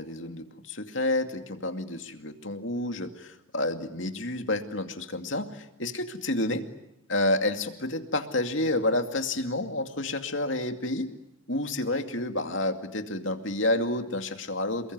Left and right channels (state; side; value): normal; both; correlation -0.17